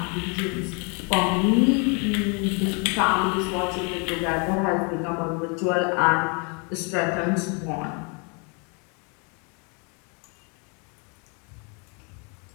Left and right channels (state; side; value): quieter; right; 34.9 dB